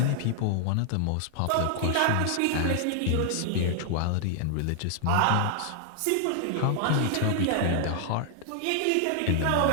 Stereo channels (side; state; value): both; different; correlation 0.00